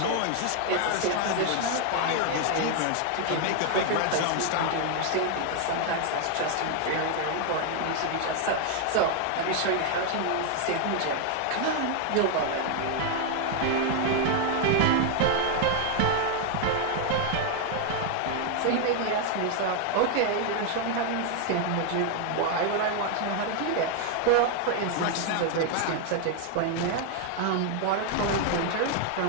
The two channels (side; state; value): both; different; correlation 0.00